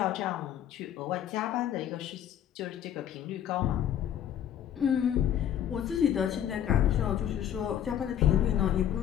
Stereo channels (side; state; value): right; quieter; 10.3 dB